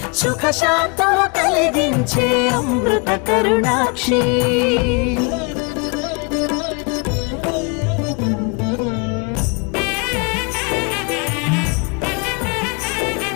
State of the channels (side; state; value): right; quieter; 33.3 dB